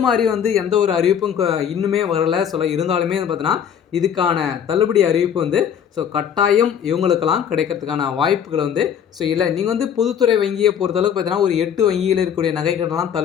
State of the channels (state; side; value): quieter; right; 8.4 dB